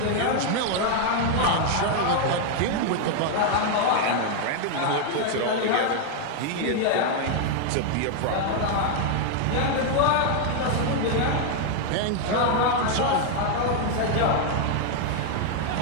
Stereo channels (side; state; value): both; different; correlation 0.00